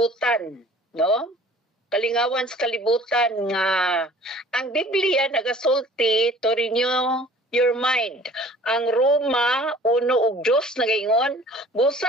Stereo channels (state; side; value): normal; both; correlation 0.49